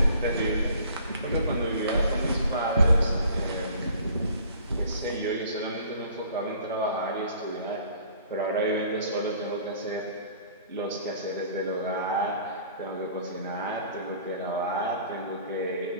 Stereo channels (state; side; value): inverted; both; correlation -0.52